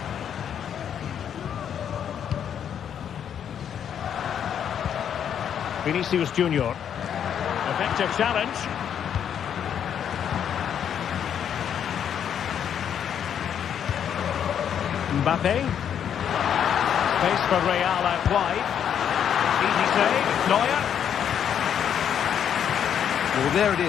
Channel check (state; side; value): quieter; right; 8.8 dB